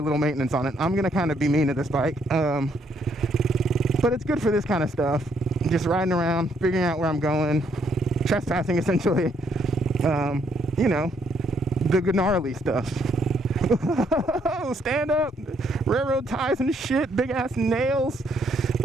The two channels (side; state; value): both; normal; correlation 0.71